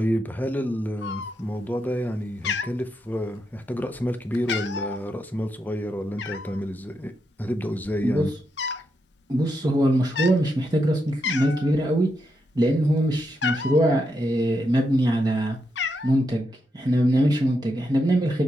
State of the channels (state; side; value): normal; both; correlation 0.83